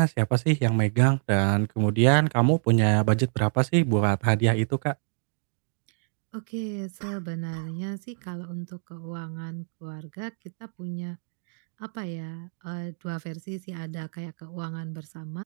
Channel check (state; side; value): silent; left; digital silence